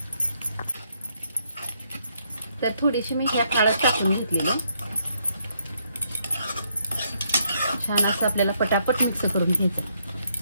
तर थोडीशी मी ह्या हळद टाकून घेतलेली, छान असं आपल्याला पटापट मिक्स करून घ्यायचं।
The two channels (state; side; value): inverted; both; correlation -0.73